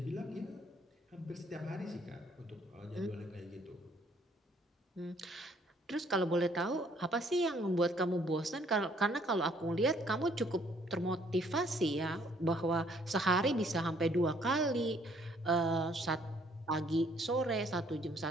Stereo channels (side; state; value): both; normal; correlation 0.63